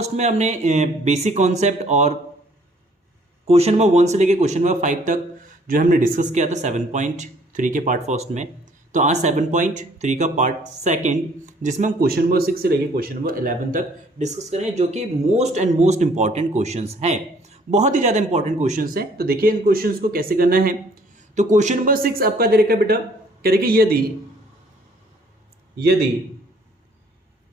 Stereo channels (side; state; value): both; normal; correlation 0.60